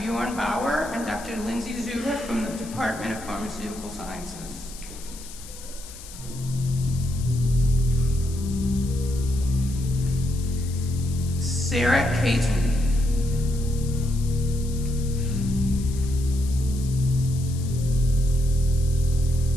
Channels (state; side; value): noise; left; hiss, 16 dB below the sound